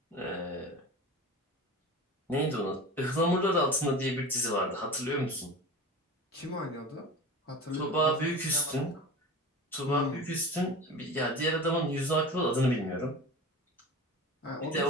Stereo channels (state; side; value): normal; both; correlation 0.32